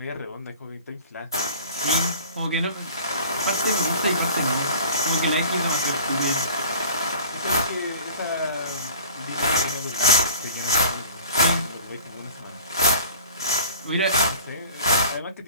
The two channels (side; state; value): both; inverted; correlation -0.44